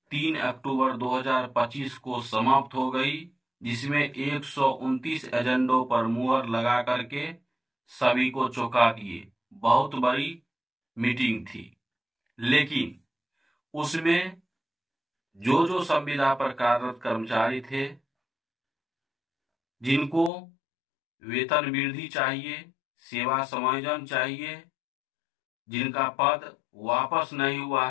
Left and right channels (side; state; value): right; drops out; at 20.3 s